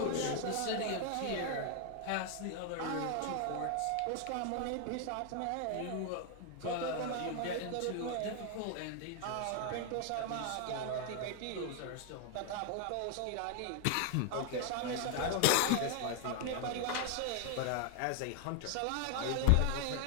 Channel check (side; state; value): both; different; correlation 0.00